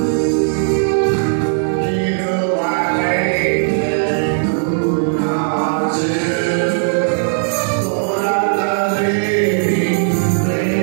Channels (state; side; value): silent; left; digital silence